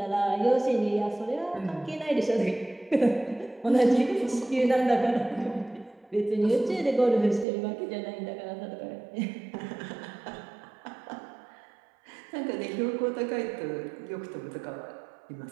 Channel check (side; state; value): left; drops out; at 7.5 s